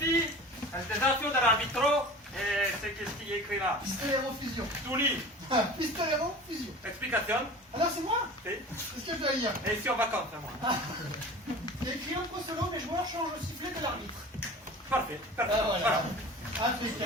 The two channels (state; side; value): normal; both; correlation 0.38